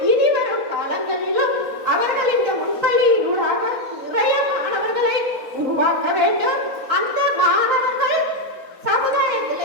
இனி வரும் காலங்களிலும் அவர்கள் இந்த முன்பள்ளியினூடாக நிறைய மாணவர்களை உருவாக்க வேண்டும். அந்த மாணவர்கள்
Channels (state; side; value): late; left; 4.1 ms